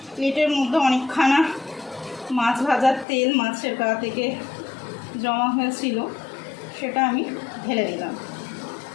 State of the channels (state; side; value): drops out; right; at 3.1 s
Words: প্লেটের মধ্যে অনেকখানা মাছ ভাজার তেল মাছের গা থেকে জমা হয়েছিল, সেটা আমি ঢেলে দিলাম,